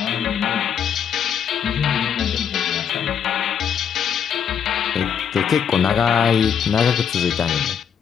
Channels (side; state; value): right; quieter; 7.9 dB